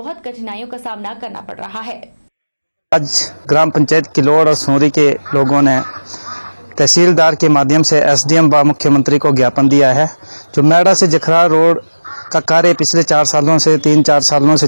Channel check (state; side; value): inverted; both; correlation -1.00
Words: कठिनाइयों का सामना करना पड़ रहा है। आज ग्राम पंचायत किलोड़ और सोरी के लोगों ने तहसीलदार के माध्यम से एसडीएम व मुख्यमंत्री को ज्ञापन दिया है। जो मेड़ा से जखराल रोड का कार्य पिछले 3-4 सालों से